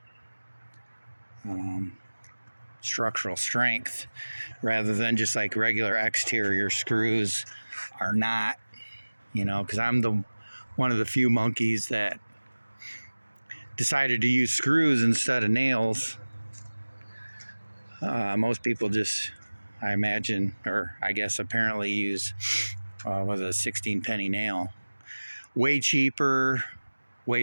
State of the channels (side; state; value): both; inverted; correlation -1.00